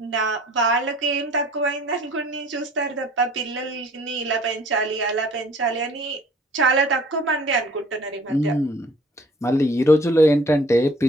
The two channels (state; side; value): normal; both; correlation 0.53